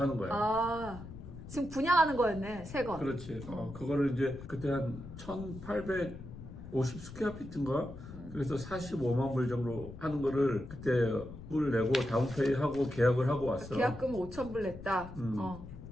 거야. 지금 분양하는 거였네, 새 거. 그렇지. 그거를 이제 그때 한 1,850 스퀘어피트인가? 그래서 45만 불 정도 하는 거를 그때 불 내고 다운페이 하고 계약을 하고 왔어. 계약금 5,000불 냈다.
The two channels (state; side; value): noise; left; rumble, 13 dB below the sound